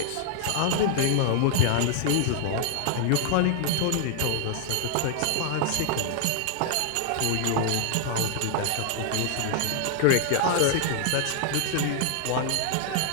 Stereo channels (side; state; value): both; different; correlation -0.01